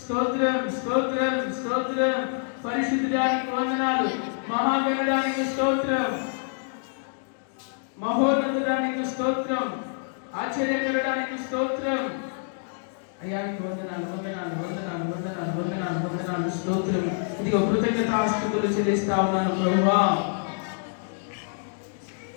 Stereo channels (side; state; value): right; silent; digital silence